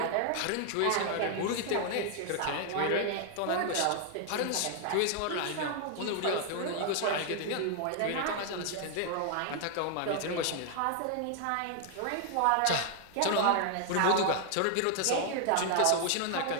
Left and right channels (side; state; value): both; different; correlation 0.00